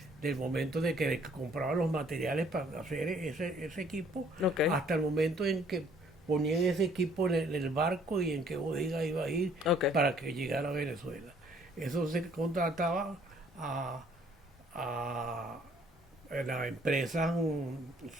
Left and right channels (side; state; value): both; normal; correlation 0.61